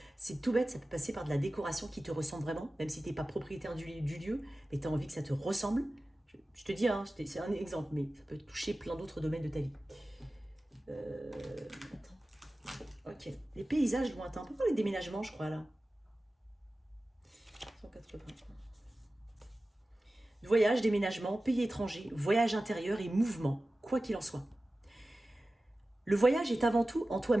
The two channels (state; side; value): normal; both; correlation 0.96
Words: C'est tout bête, ça peut passer par de la décoration qui te ressemble vraiment, même si tu n'es pas propriétaire du lieu, mais tu as envie que ça te ressemble. Je te dis, hein, c'est un exemple, mais ça peut toucher plein d'autres domaines de ta vie. Attends. Ok. Les paysages lointains. On peut parler de déménagement, je crois, là. 180. Voyage, déménagement, pays étranger, voyage intérieur et mouvement, quoi qu'il en soit. Le voyage est avant tout en